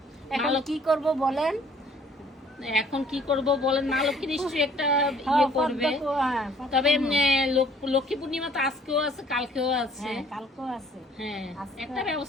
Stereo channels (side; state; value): both; normal; correlation 0.57